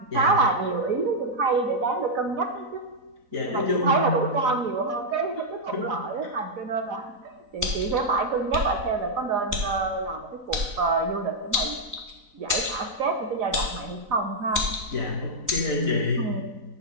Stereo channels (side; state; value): left; late; 4.0 ms